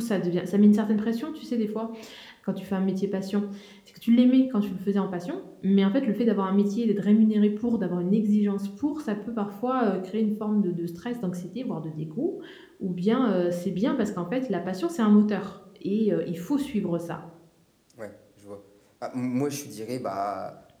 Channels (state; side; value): identical; both; correlation 1.00